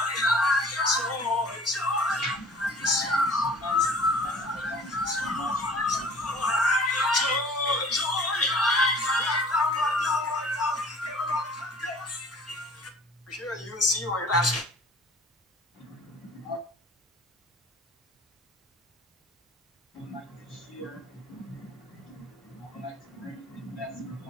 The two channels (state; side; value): normal; both; correlation 0.48